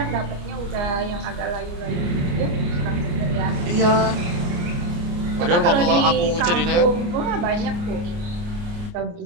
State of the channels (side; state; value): left; late; 29 ms